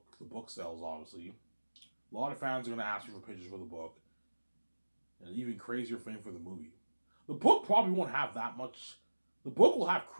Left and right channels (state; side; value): inverted; both; correlation -1.00